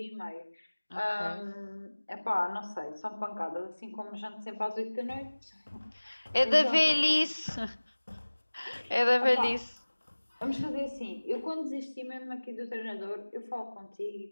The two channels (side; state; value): both; inverted; correlation -1.00